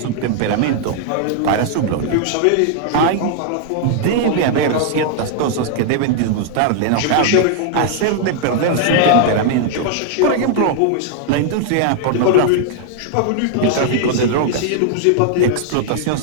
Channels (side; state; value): both; different; correlation 0.00